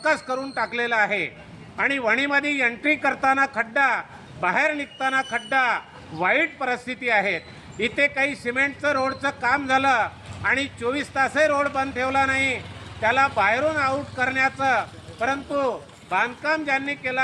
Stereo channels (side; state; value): both; identical; correlation 1.00